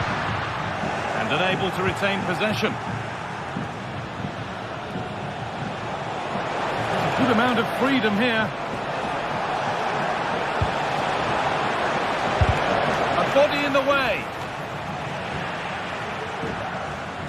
Unable to retain possession. A good amount of freedom here. A body in the way.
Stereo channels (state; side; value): identical; both; correlation 1.00